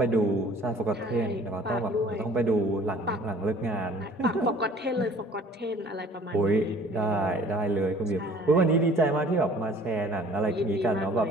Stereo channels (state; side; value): normal; both; correlation 0.51